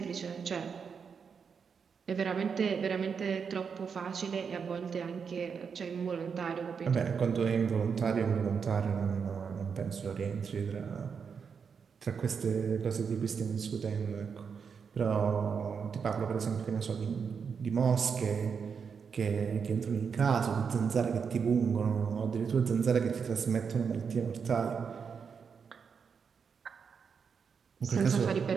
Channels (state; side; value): quieter; left; 6.2 dB